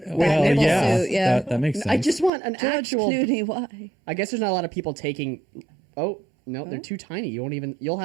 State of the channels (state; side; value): drops out; left; at 2.3 s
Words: Well, nipple yeah, suit, yeah. that makes sense. I just want an George actual. Clooney, why? I guess there's not a lot of people taking. Oh no, they're too tiny. You won't even. You'll